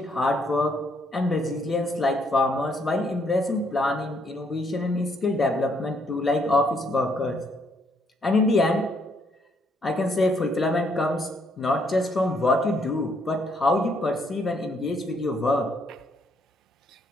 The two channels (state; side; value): normal; both; correlation 0.71